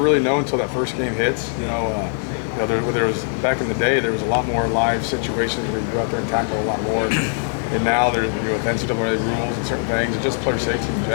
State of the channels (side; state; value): right; silent; 65 dB below the other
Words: know until that first game hits. There was back in the day, there was a lot more live situations where you go out there and tackle a lot more. And now there's with NCAA rules and certain things, and just player safety in